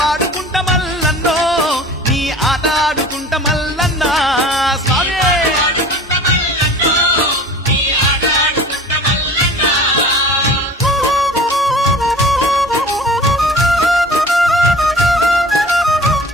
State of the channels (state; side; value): normal; both; correlation 0.42